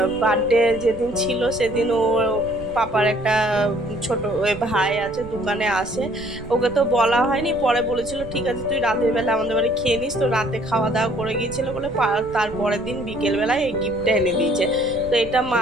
বার্থডে যেদিন ছিল, সেদিন ও পাপার একটা ছোট ভাই আছে, দোকানে আসে, ওকে তো বলা হয়নি, পরে বলেছিল ঠিক আছে তুই রাতের বেলা আমাদের বাড়ি খেয়ে নিস। তো রাতে খাওয়া দাওয়া করে গিয়েছিল বলে তারপরের দিন বিকেলবেলায় এই গিফটটা এনে দিয়েছে। তো এটা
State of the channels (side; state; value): right; noise; rumble, 15 dB below the sound